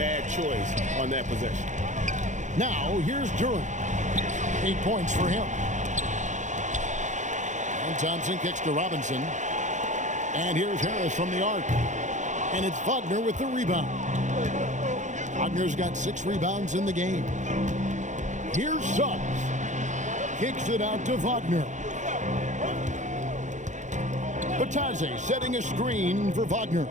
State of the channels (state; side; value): late; left; 0.35 ms